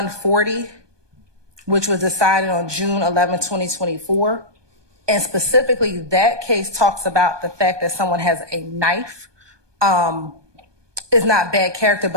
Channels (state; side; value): late; left; 1.2 ms